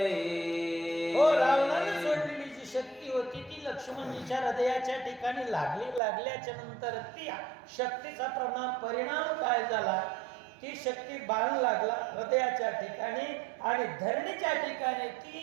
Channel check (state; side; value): drops out; left; at 6.0 s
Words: हो, रावणाने सोडलेली जी शक्ती होती ती लक्ष्मणजीच्या हृदयाच्या ठिकाणी लागल्याच्या नंतर ती शक्तीचा परिणाम काय झाला, ती शक्ती बाण लागला हृदयाच्या ठिकाणी आणि धरणीच्या ठिकाणी